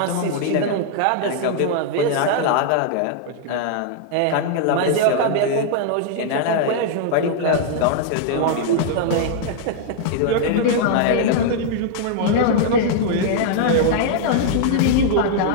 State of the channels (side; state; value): both; different; correlation -0.01